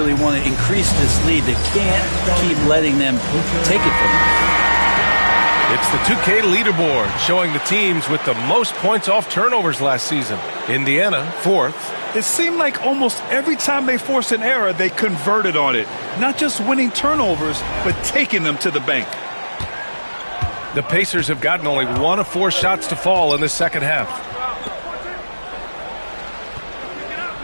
want to increase this lead. They can't keep letting them take it from them. It's the 2K leaderboard showing the teams with the most points off turnovers last season. Indiana, 4th. It seemed like almost every time they forced an error, they converted on it. Not just winning turnovers, but taking them to the bank. The Pacers have gotten only 1 of 4 shots to fall in the second half.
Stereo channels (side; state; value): both; inverted; correlation -1.00